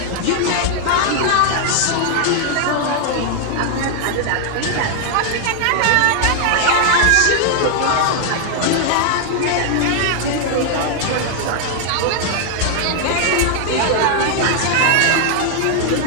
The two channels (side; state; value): both; different; correlation 0.00